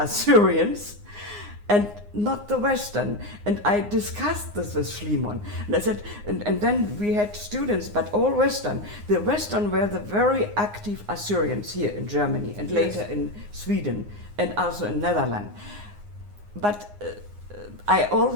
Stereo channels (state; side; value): late; left; 9.7 ms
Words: and not the Western. And I discussed this with Schliemann. And I said, and then we had students, but all Western. The Western were the very active Assyrians here in Germany, and later in Sweden, and also in Netherlands. But I